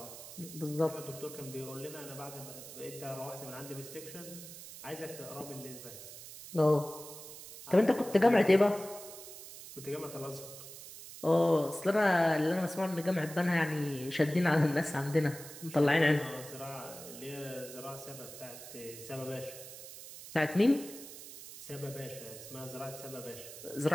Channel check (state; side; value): noise; right; hiss, 14 dB below the sound